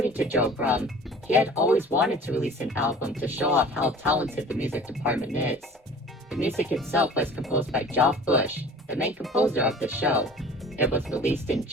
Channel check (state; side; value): normal; both; correlation 0.44